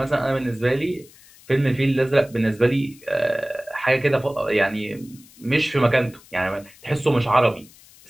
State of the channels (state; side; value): noise; left; hiss, 25 dB below the sound